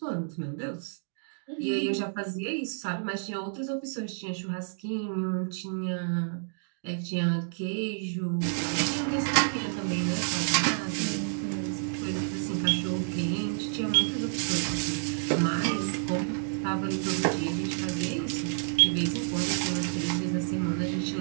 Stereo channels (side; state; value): left; silent; digital silence